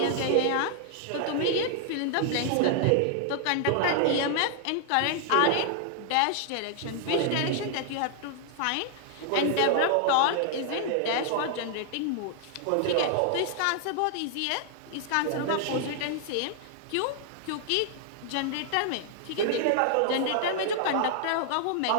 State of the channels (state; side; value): different; both; correlation -0.01